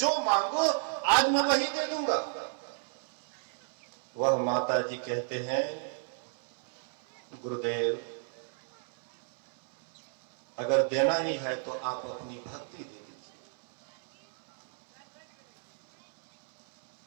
मांगो आज मैं वही दे दूंगा। वह माता जी कहते हैं गुरुदेव अगर देना ही है तो आप अपनी भक्ति दे दीजिए।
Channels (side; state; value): left; silent; 57 dB below the other